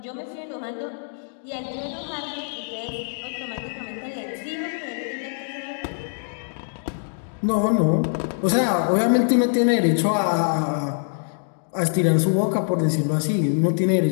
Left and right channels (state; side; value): silent; right; digital silence